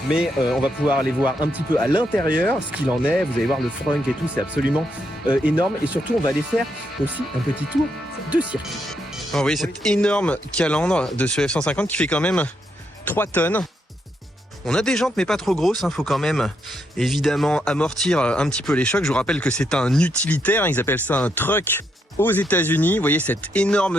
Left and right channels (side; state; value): both; normal; correlation 0.78